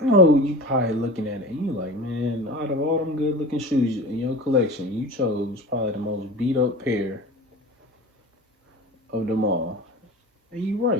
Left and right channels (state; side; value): normal; both; correlation 0.34